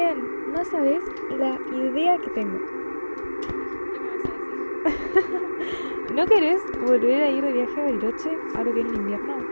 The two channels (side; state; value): both; inverted; correlation -1.00